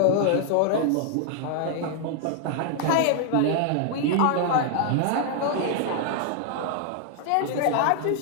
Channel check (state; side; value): different; both; correlation 0.00